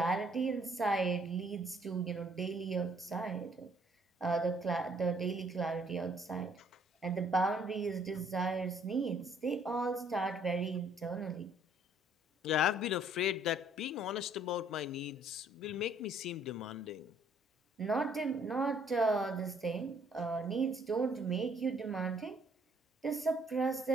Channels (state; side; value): normal; both; correlation 0.63